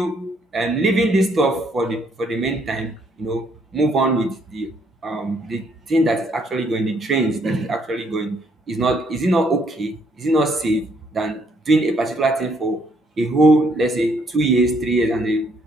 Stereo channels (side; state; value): both; normal; correlation 0.69